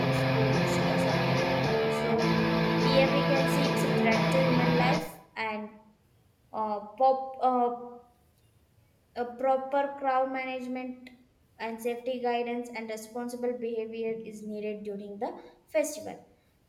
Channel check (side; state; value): both; identical; correlation 1.00